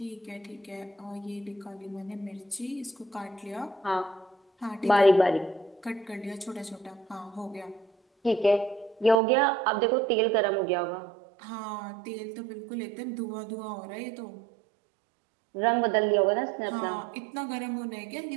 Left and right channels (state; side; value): drops out; left; at 9.2 s